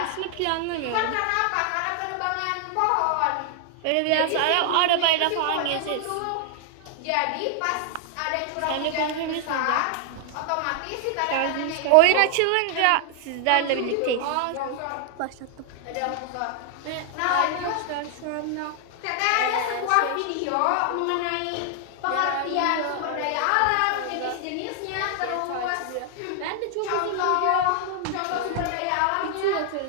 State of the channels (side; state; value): both; different; correlation 0.00